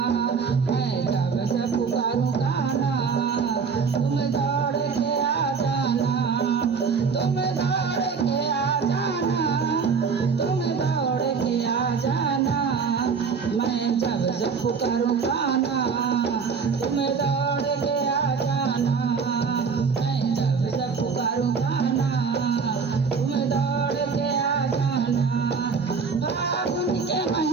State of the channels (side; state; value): left; quieter; 5.5 dB